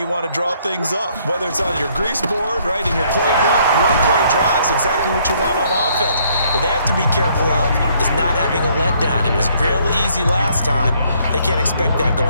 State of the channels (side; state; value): both; inverted; correlation -0.66